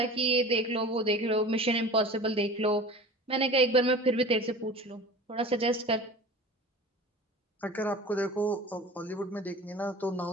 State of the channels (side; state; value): both; normal; correlation 0.38